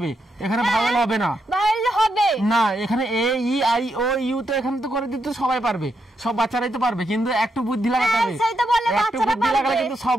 এখানে ভাওয়েল হবে না। ভাওয়েল হবে না, এখানে এ ই আই ও ইউ তো এখানে তো করে দিতে সবাই পারবে, সব বাচ্চারাই তো পারবে, কিন্তু একটু বুদ্ধি লাগাতে হবে। একটু বুদ্ধি লাগালে কিন্তু সব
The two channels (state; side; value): normal; both; correlation 0.81